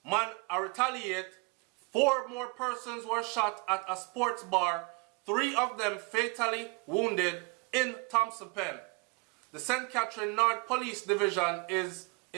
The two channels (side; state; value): left; quieter; 29.9 dB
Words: retaliate. 4 more persons were shot at a sports bar, 3 of them fatally wounded in Thompson Pen. The St. Catherine North Police Division is